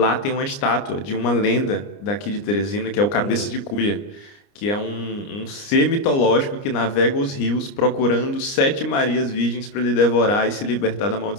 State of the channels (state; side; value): late; right; 29 ms